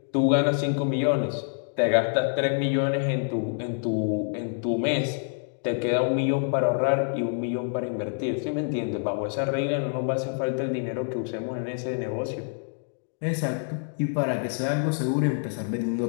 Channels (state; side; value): silent; right; digital silence